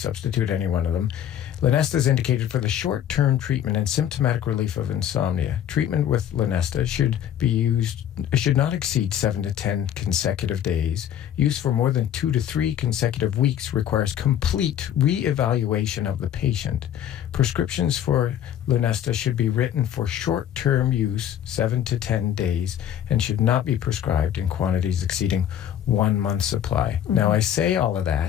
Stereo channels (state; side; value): quieter; right; 10.3 dB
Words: any one of them. Lunesta is indicated for the short-term treatment and symptomatic relief of insomnia. Treatment with Lunesta should not exceed 7 to 10 consecutive days. Use for more than 2 to 3 consecutive weeks requires complete re-evaluation of the patient. Prescriptions for Lunesta should be written for short-term use, 7 to 10 days, and should not be prescribed in quantities exceeding 1 month's supply. Mm-hmm. Now, I say all of